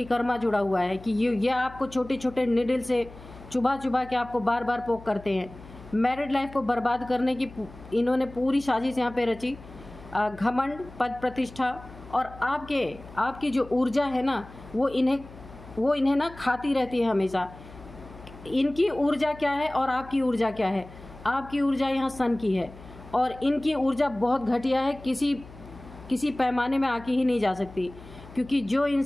कर्मा जुड़ा हुआ है कि ये आपको छोटे छोटे निडल से चुभा चुभा के आपको बार बार पोक करते हैं। मैरिड लाइफ को बर्बाद करने की इन्होंने पूरी साजिश यहाँ पे रची। घमंड, पद, प्रतिष्ठा, और आपकी जो ऊर्जा है ना, वो इन्हें ना खाती रहती है हमेशा। इनकी ऊर्जा क्या है और आपकी ऊर्जा क्या है? आपकी ऊर्जा यहाँ सन की है और इनकी ऊर्जा बहुत घटिया है, किसी पैमाने में आके ही नहीं जा सकती। क्योंकि जो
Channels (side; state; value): left; noise; hum, 18 dB below the sound